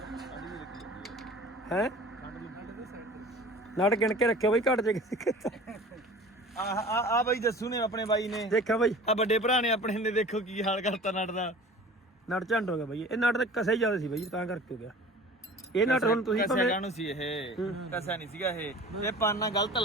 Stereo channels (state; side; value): normal; both; correlation 0.42